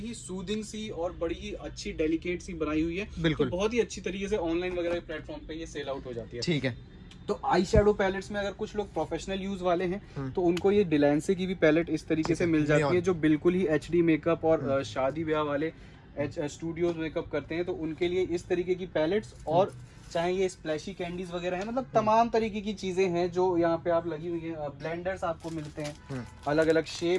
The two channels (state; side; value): identical; both; correlation 1.00